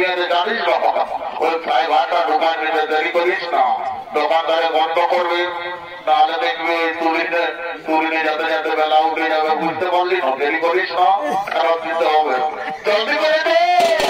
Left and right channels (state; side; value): identical; both; correlation 1.00